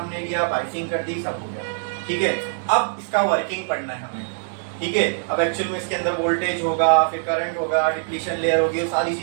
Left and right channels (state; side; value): silent; left; digital silence